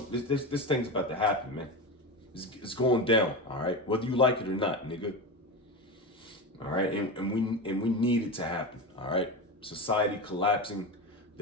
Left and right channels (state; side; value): normal; both; correlation 0.22